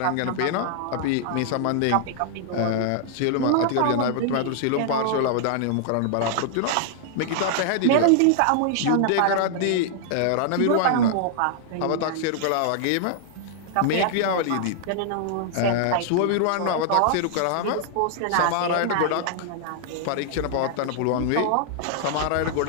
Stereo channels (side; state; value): both; different; correlation -0.01